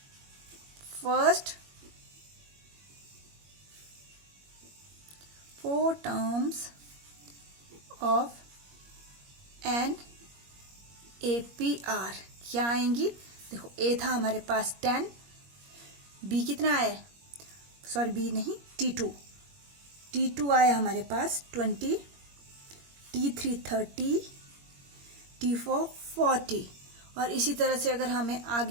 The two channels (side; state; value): left; late; 21 ms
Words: First four terms of an APR क्या आएंगी। देखो, A था हमारे पास 10, B कितना है, सॉरी B नहीं, T2 आया हमारे पास 20, T3 30, T4 40। और इसी तरह से अगर हमें